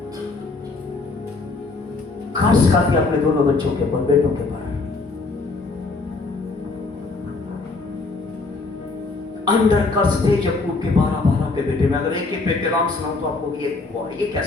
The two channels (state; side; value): quieter; right; 3.7 dB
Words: खास करके अपने दोनों बच्चों के ऊपर, बेटों के ऊपर अंदर कर्ज थे याकूब के 12 के बेटे में। अगर एक एक बेटे नाम सुनाऊं तो आपको ये